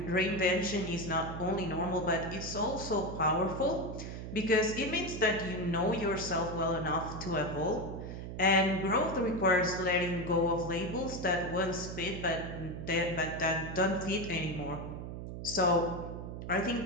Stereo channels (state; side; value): noise; right; hum, 8 dB below the sound